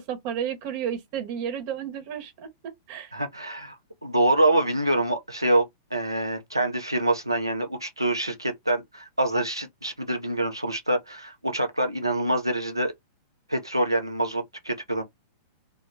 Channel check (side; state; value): both; inverted; correlation -0.72